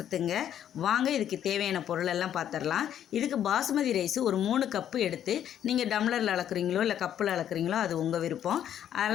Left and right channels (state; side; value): quieter; right; 10.2 dB